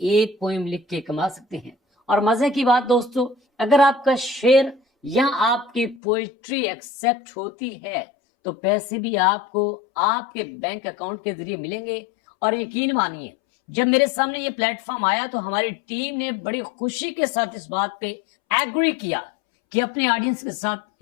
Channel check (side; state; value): right; drops out; at 6.0 s